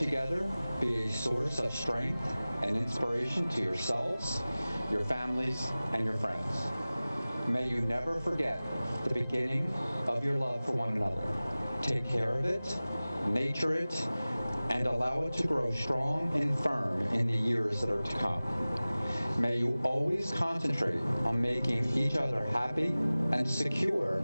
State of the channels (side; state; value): both; inverted; correlation -0.98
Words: be a source of strength and inspiration to yourselves, your families, and your friends. May you never forget the beginning of your love for one another. Take care of it, nurture it, and allow it to grow strong and firm in the years that are to come. May you always concentrate on making each other happy and secure